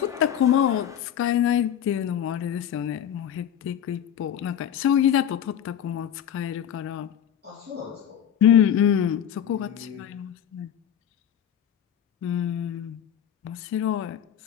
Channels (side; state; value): right; quieter; 9.6 dB